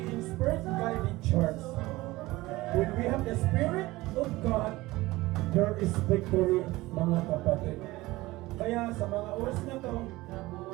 inspired. we have the Spirit of God, there is victory, mga kapatid. Kaya sa mga oras na to,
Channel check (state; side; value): quieter; left; 19.4 dB